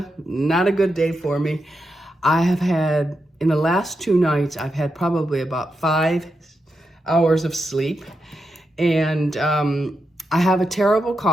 Not a good day for me. I have had, in the last 2 nights, I've had probably about 5 hours of sleep. And I have a terrible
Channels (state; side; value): normal; both; correlation 0.86